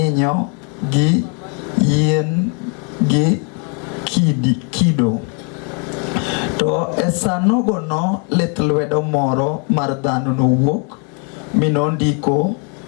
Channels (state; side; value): quieter; right; 37.2 dB